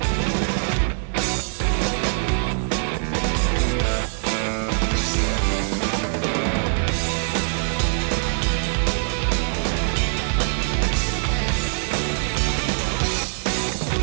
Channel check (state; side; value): silent; left; digital silence